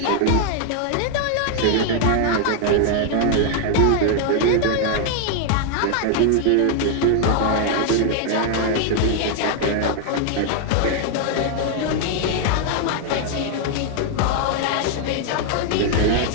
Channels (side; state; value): both; different; correlation 0.00